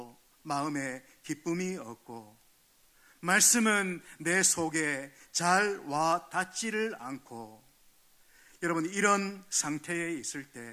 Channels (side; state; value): both; identical; correlation 1.00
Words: 마음에 기쁨이 없고 말씀은 내 속에 잘 와 닿지를 않고, 여러분, 이런 상태에 있을